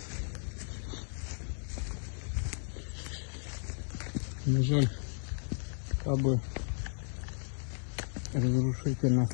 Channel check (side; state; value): right; silent; digital silence